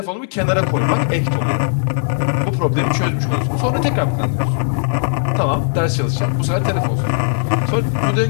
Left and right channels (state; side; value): silent; right; 67 dB below the other